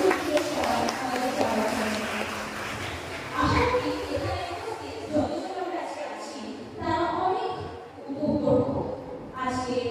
সবাই আমাদের যাওয়া আশা করি এখানে যতজন আমরা আজকে আছি তারা অনেক উপভোগ করবো আজকে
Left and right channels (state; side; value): identical; both; correlation 1.00